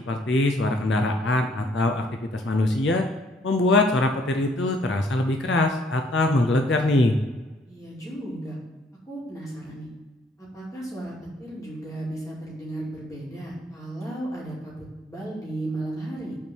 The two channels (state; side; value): normal; both; correlation 0.64